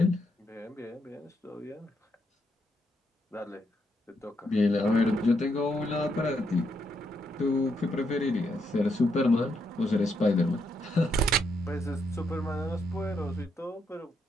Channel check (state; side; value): normal; both; correlation 0.78